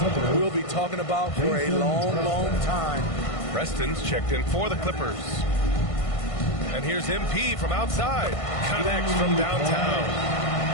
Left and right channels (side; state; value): right; late; 1.5 ms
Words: we'll be talking about for a long, long time. Preston's checked in for the Clippers. And here's MP from outside. Connects from downtown.